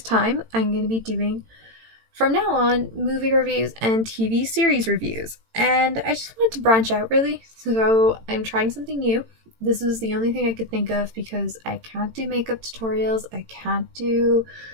time. I'm going to be doing, from now on, movie reviews and TV series reviews, and I just wanted to branch out really, so I'm trying something new. This was the only thing I could think of because I can't do makeup tutorials, I can't do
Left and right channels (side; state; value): left; late; 18 ms